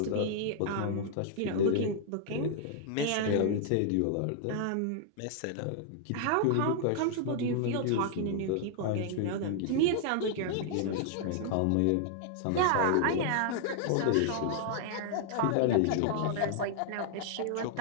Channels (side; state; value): both; different; correlation -0.01